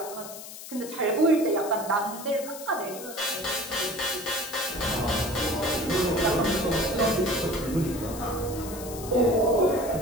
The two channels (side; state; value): left; noise; hiss, 13 dB below the sound